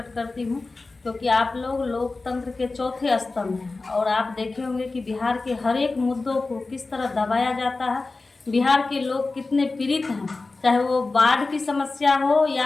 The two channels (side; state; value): right; quieter; 3.6 dB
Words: करती हूँ, क्योंकि आप लोग लोकतंत्र के चौथे स्तंभ हैं और आप देखे होंगे कि बिहार के हर एक मुद्दों को किस तरह दबाया जाता है। बिहार के लोग कितने पीड़ित हैं, चाहे वो बाढ़ की समस्या हो